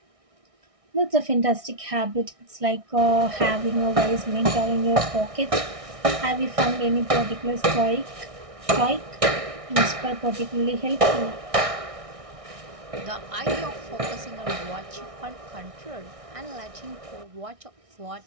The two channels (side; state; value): left; late; 1.6 ms